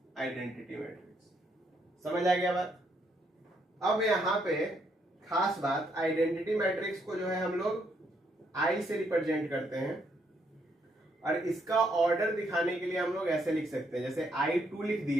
identity matrix. समझ आ गया बात? अब यहाँ पे खास बात, आइडेंटिटी मैट्रिक्स को जो है हम लोग आई से रिप्रेजेंट करते हैं और इसका ऑर्डर दिखाने के लिए हम लोग ऐसे लिख सकते हैं, जैसे I2 लिख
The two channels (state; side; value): normal; both; correlation 0.73